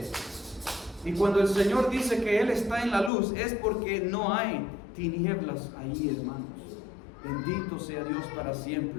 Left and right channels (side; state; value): right; drops out; at 3.1 s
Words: Y cuando el Señor dice que Él está en la luz, es porque no hay tinieblas ahí, hermanos. Bendito sea Dios para